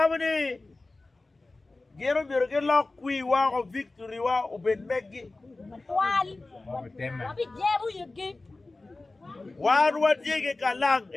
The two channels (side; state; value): right; quieter; 3.2 dB